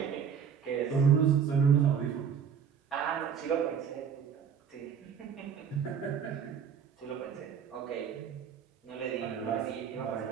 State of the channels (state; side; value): quieter; left; 7.4 dB